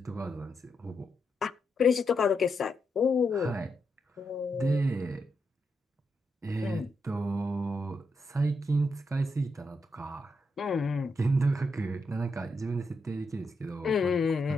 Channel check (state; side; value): normal; both; correlation 0.83